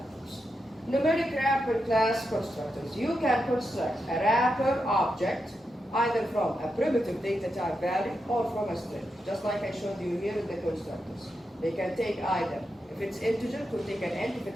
Numeric wrapper class constructors. You can construct a wrapper object either from a primitive data type value or from a string, just like I showed you here in the constructors. They can take either, if it's integer, it will take an int, if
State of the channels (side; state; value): both; normal; correlation 0.86